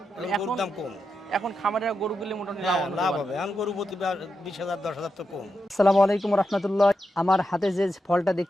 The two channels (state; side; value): normal; both; correlation 0.87